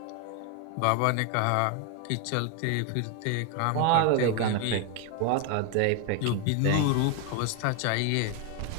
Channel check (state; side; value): different; both; correlation 0.01